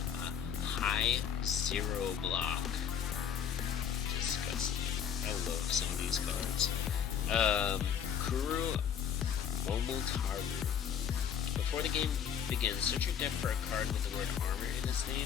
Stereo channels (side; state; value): right; quieter; 8.1 dB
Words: High 0 block. Disgusting. I love some of these cards. Kuru Momotaru. Before the game begins, search your deck for a card with the word armor in its